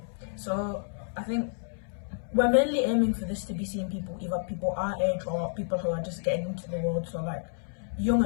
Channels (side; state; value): right; silent; 58 dB below the other